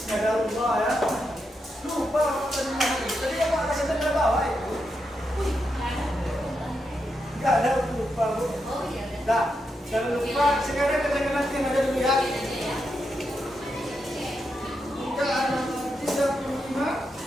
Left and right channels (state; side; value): normal; both; correlation 0.84